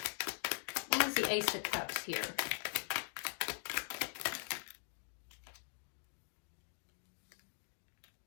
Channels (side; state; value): right; silent; digital silence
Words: Why is the Ace of Cups here?